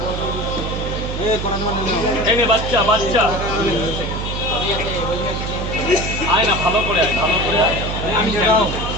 এই নে বাচ্চা, বাচ্চা আয় না, ভালো করে আয়, ভালো করে আয়। আমি যাও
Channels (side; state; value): right; noise; hum, 4 dB below the sound